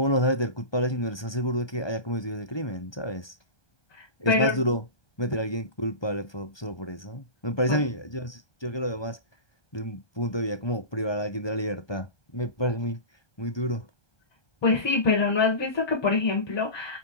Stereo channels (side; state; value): right; late; 1.2 ms